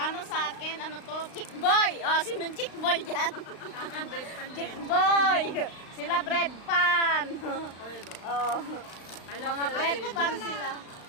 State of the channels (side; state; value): right; late; 35 ms